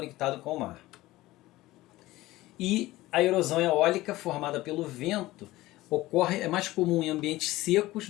com o mar. E a erosão eólica formada pelo vento é mais comum em ambientes secos,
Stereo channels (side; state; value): right; quieter; 17.7 dB